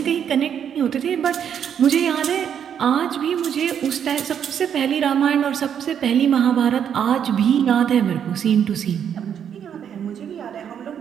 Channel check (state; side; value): quieter; left; 8.5 dB